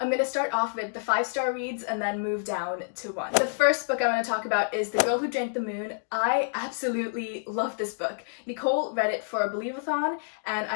gonna start off with the 5-star reads and then move down to 1. The first book I want to talk about is The Girl Who Drank the Moon. I absolutely love this book. Nicole read it for a Believe-a-thon and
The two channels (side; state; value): right; silent; digital silence